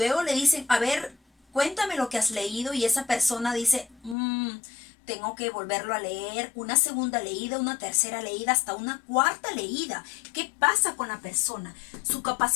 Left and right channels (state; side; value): drops out; right; at 4.2 s